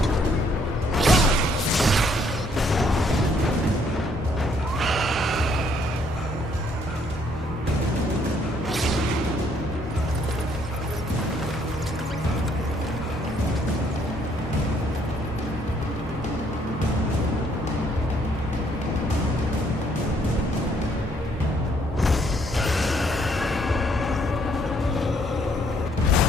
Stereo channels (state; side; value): normal; both; correlation 0.67